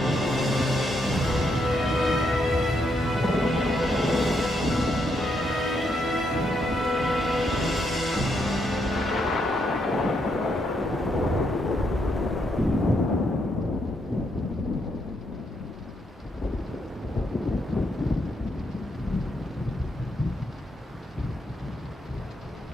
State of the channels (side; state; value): both; normal; correlation 0.77